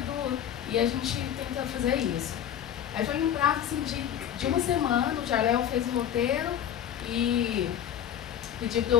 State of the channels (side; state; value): right; quieter; 10.1 dB